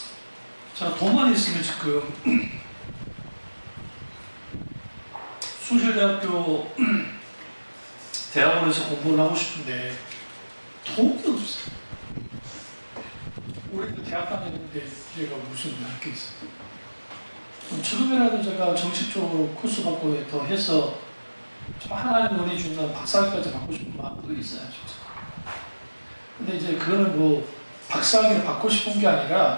자, 돈만 있으면 지금 숭실대학교 대학원에서 공부를 하고 싶은데 돈이 없어요. 올해도 대학 다녔는데 제가 무슨 할 게 있어요. 지금이라도 제가 정식적으로 코스 받고 더 해서 좀 하나님 은혜 주는 박사학위까지 받고 싶은 마음도 있어요. 근데 이제 그거는 박사학위를 받고 싶은 게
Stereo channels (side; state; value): both; inverted; correlation -1.00